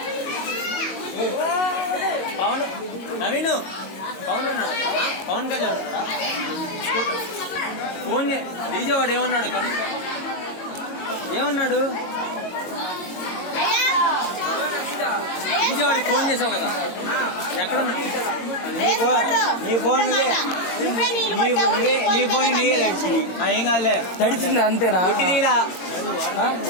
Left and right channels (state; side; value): late; right; 22 ms